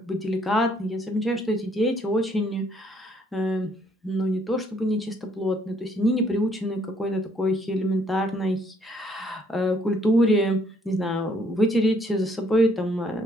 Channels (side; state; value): both; normal; correlation 0.66